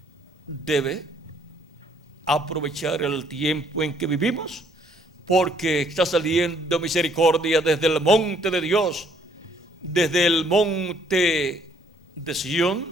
debe aprovechar el tiempo en que vivimos, porque está saliendo misericordia desde el monte de Dios, desde el monte de Sión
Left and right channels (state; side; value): normal; both; correlation 0.64